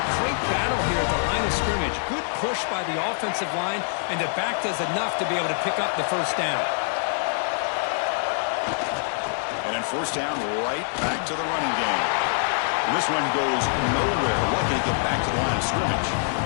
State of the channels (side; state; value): right; silent; digital silence